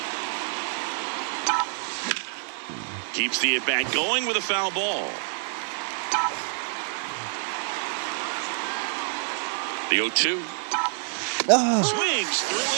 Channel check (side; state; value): left; silent; 60 dB below the other